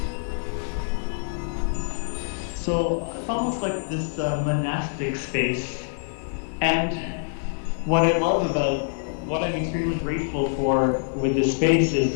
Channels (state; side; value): silent; right; digital silence